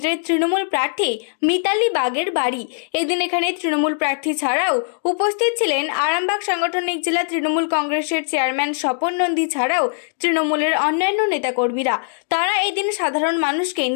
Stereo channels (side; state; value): right; silent; digital silence